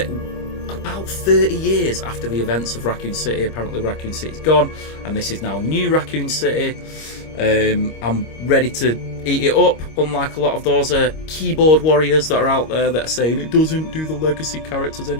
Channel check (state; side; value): late; right; 25 ms